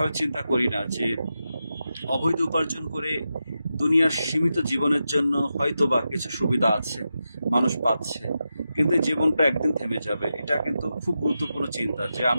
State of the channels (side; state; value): both; inverted; correlation -0.89